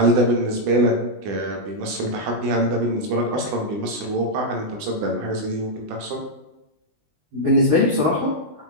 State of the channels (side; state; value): left; late; 20 ms